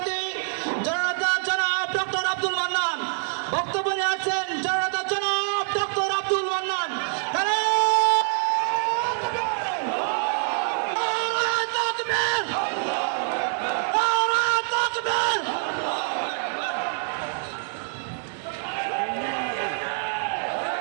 জননেতা জনাব ডক্টর আব্দুল মান্নান বক্তব্য নিয়ে আসছেন। জননেতা জনাব ডক্টর আব্দুল মান্নান।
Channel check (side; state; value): left; silent; 61 dB below the other